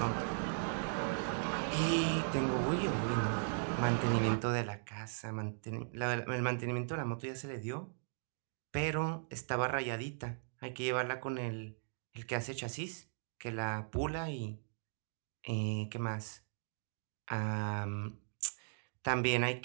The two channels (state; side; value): silent; left; digital silence